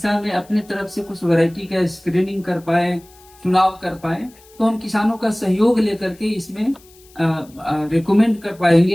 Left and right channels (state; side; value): noise; left; hiss, 27 dB below the sound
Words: में अपने तरफ से कुछ वैरायटी का स्क्रीनिंग कर पाए, चुनाव कर पाए। तो हम किसानों का सहयोग लेकर के इसमें रिकमेंड कर पाएंगे